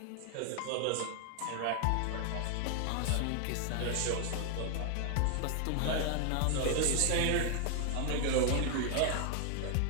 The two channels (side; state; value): both; different; correlation 0.00